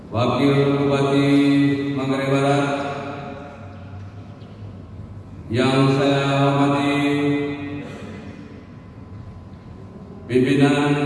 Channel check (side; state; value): both; identical; correlation 1.00